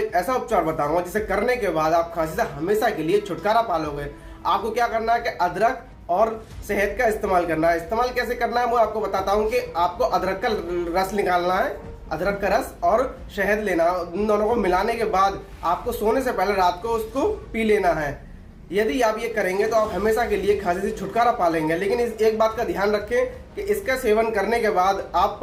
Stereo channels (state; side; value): identical; both; correlation 1.00